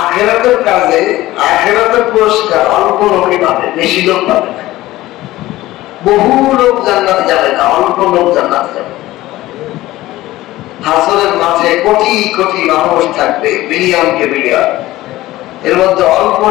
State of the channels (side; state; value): right; quieter; 16.8 dB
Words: কাজে আখেরাতের পুরস্কার অল্প লোকই পাবে, বেশি লোক পাবে না। বহু লোক জান্নাতে যাবে না, অল্প লোক জান্নাতে যাবে। হাসরের মাঝে কোটি কোটি মানুষ থাকবে, বিলিয়নকে বিলিয়ন, এর মধ্যে অল্প